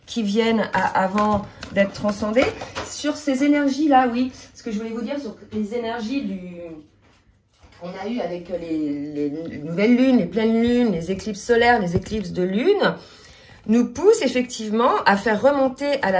qui viennent avant d'être transcendées. Sur ces énergies-là, oui, ce que je voulais vous dire sur les énergies qu'on a eu avec les nouvelles lunes, les pleines lunes, les éclipses solaires, les éclipses de lune, nous pousse effectivement à faire remonter à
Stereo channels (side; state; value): both; identical; correlation 1.00